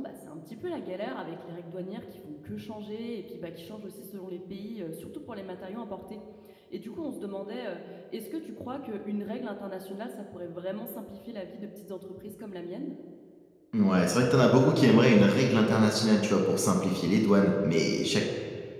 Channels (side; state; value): both; identical; correlation 1.00